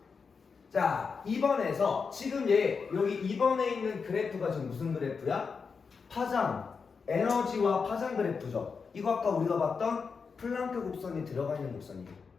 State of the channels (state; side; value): quieter; right; 5.4 dB